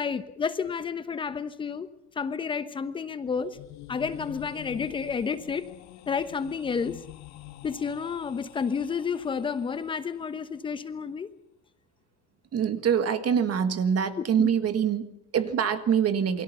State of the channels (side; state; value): both; normal; correlation 0.41